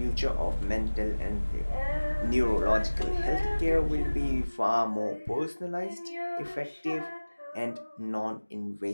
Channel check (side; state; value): both; inverted; correlation -1.00